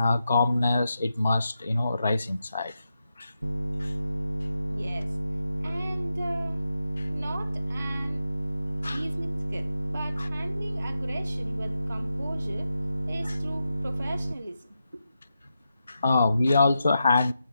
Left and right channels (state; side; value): inverted; both; correlation -0.88